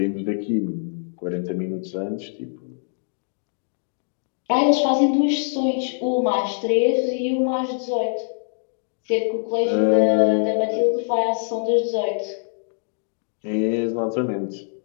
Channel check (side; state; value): right; silent; digital silence